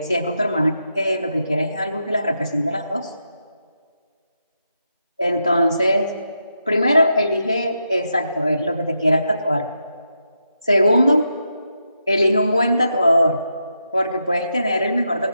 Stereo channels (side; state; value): both; inverted; correlation -0.84